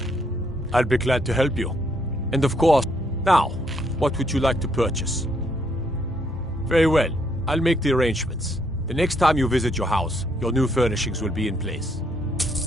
I'll be glad to help you. And of course, now, what would you like to purchase? Very well. I'll make the arrangements. The next time you visit your house, your new furnishings will be in place.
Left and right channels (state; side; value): normal; both; correlation 0.72